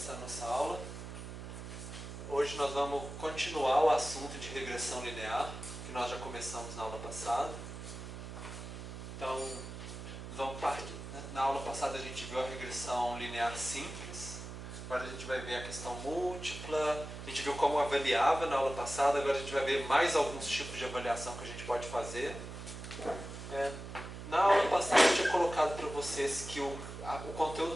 a nossa aula. Hoje nós vamos continuar o assunto de regressão linear, que nós já começamos na aula passada. Então, na aula passada a gente viu a regressão linear simples, agora a gente vai ver a questão múltipla, a gente viu como avaliava na aula passada, agora a gente vai ver mais alguns tipos de avaliação que a gente pode fazer. Na aula passada eu tinha colocado para vocês que o conteúdo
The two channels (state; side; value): noise; right; hum, 10 dB below the sound